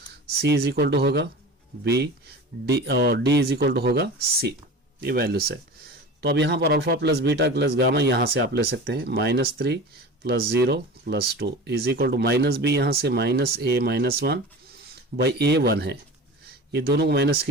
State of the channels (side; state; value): both; normal; correlation 0.34